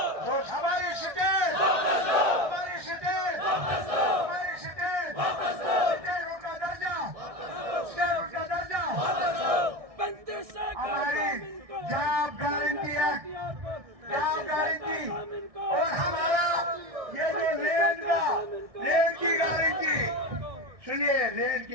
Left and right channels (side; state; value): left; late; 1.6 ms